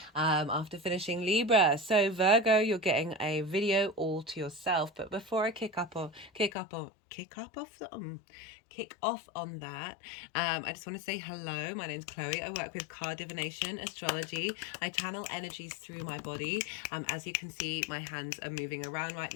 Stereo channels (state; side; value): drops out; right; at 6.5 s